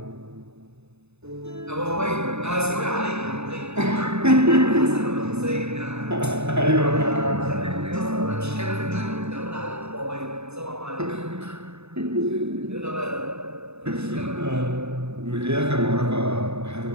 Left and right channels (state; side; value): late; left; 0.80 ms